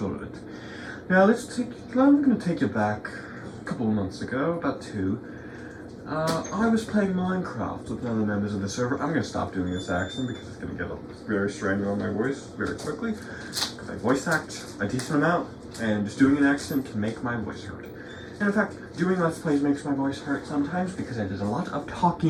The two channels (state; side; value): identical; both; correlation 1.00